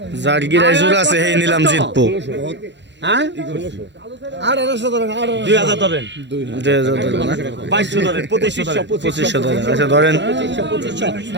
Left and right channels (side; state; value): left; late; 0.52 ms